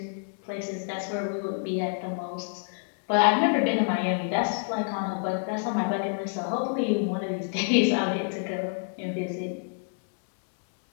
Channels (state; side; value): silent; right; digital silence